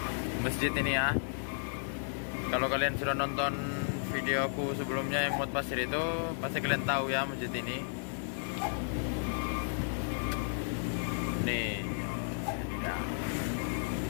Masjid ini ya. Kalau kalian sudah nonton videoku sebelumnya yang Mod Pasir itu, pasti kalian tahu ya masjid ini. Nih. Ya.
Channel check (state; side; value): silent; right; digital silence